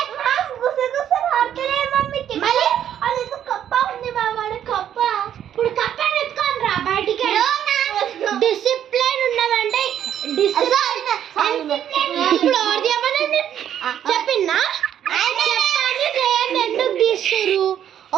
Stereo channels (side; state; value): left; quieter; 10.1 dB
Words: గుసగుసలు అర్థలే మమ్మీకి. మళ్ళీ అది కప్ప ఉంది బాబా. కప్ప ఇప్పుడు కప్ప ఎత్తుకొని రా బయటికి. డిసిప్లైన్ ఉన్నదంటే ఇప్పుడు ఎవరు చేయమనండి చెప్పిందా? ఎందుకు తీస్తారు?